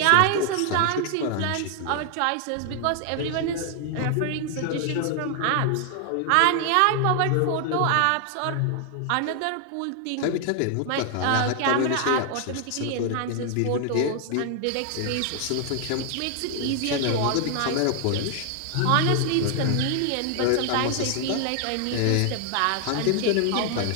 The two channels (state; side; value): different; both; correlation 0.00